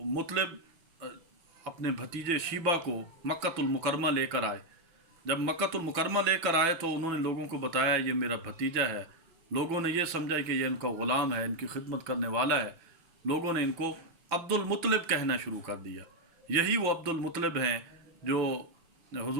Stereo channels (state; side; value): late; left; 6.1 ms